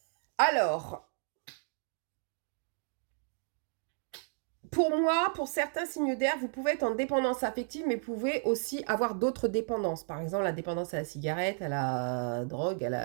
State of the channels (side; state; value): left; silent; 55 dB below the other